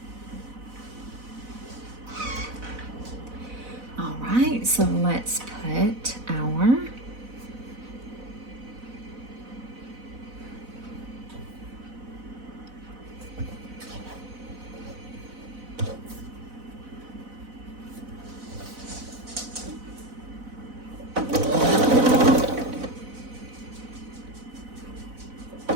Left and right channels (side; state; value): left; late; 4.0 ms